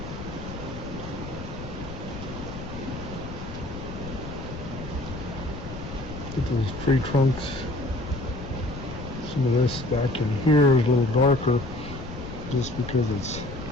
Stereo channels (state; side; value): noise; left; rumble, 10 dB below the sound